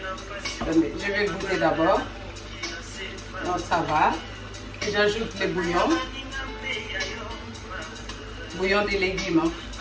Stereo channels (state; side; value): identical; both; correlation 1.00